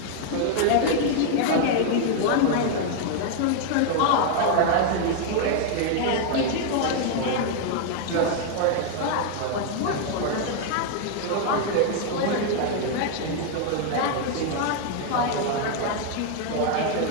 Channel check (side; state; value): both; different; correlation 0.00